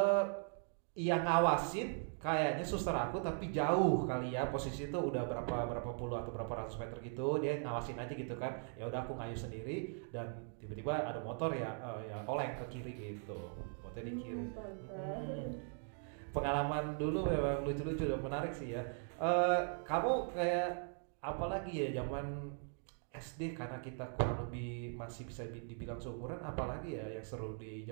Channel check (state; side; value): silent; left; 51 dB below the other